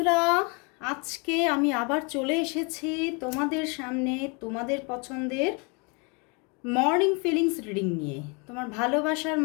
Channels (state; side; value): quieter; right; 32.1 dB